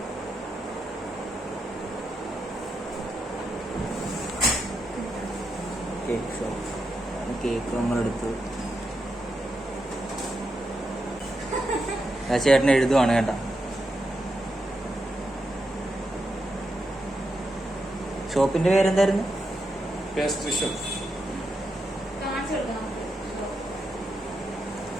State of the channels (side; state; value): both; normal; correlation 0.85